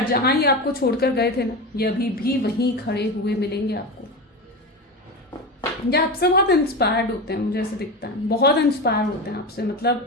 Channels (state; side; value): normal; both; correlation 0.22